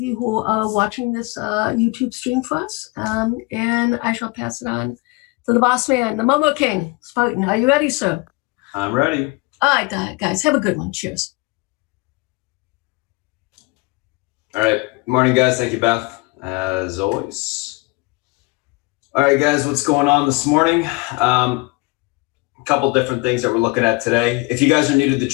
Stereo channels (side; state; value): right; quieter; 26.2 dB